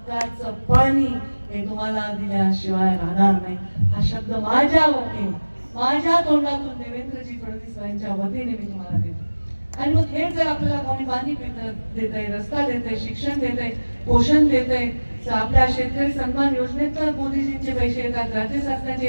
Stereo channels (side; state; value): both; inverted; correlation -1.00